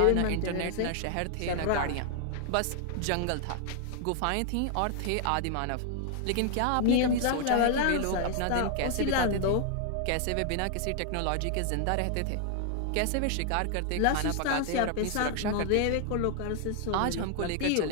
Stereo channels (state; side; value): different; both; correlation 0.00